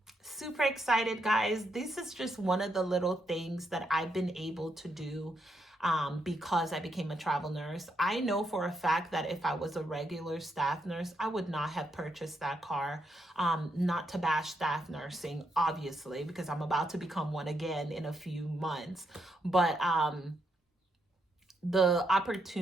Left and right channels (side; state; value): both; normal; correlation 0.79